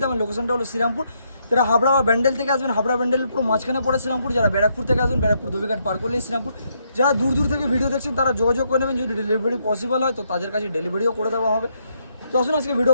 আমার লোকেশনটা হলো শ্রীরামপুর। যারা হাবড়া বা ব্যান্ডেল থেকে আসবেন, হাবড়া ব্যান্ডেলের পুরো মাঝখানে পড়ে শ্রীরামপুর। যারা ব্যারাকপুর থেকে আসবেন, ব্যারাকপুর ধোবিঘাট পার করলেই শ্রীরামপুর। যারা দূর থেকে ভিডিও দেখছেন তারা যোগাযোগ করে নেবেন, যদি ডেলিভারি পসিবল হয় তো তাদের কাছে ডেলিভারিও করে দেওয়া হবে। তো আসুন আজকে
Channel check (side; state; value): both; inverted; correlation -0.75